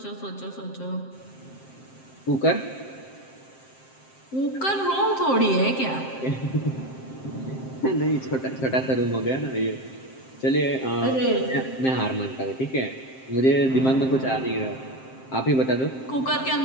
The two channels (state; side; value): late; right; 7.6 ms